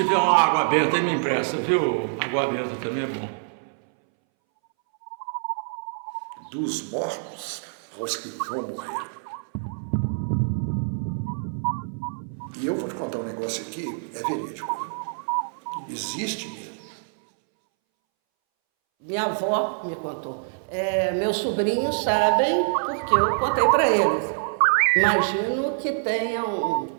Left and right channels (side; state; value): left; silent; 61 dB below the other